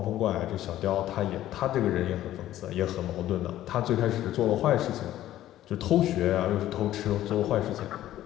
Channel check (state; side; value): quieter; right; 13.5 dB